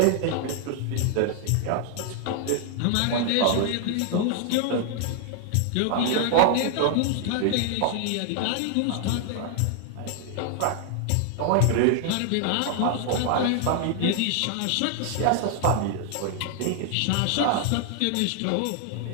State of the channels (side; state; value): both; different; correlation 0.00